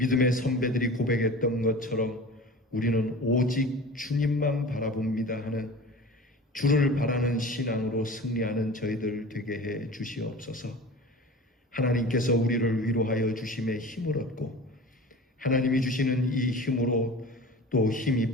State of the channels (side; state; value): both; normal; correlation 0.37